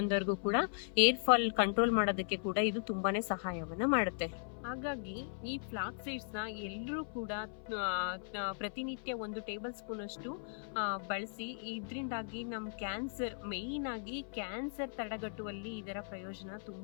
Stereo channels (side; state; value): right; silent; 53 dB below the other